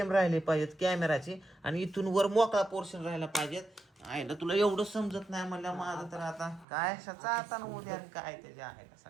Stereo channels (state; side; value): drops out; left; at 6.7 s